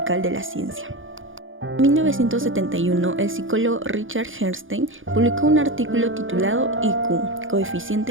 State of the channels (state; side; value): late; left; 0.58 ms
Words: de la ciencia. En 1971, el psicólogo Richard Herrnstein publicó un artículo titulado IQ,